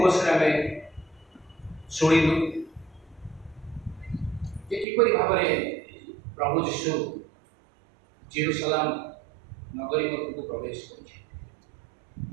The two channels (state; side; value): drops out; left; at 4.9 s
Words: ଆମେ ଶୁଣିଲୁ ଯେ କିପରି ଭାବରେ ପ୍ରଭୁ ଯୀଶୁ ଜେରୁସାଲେମ ନଗରୀ ମଧ୍ୟକୁ ପ୍ରବେଶ କରୁଛି।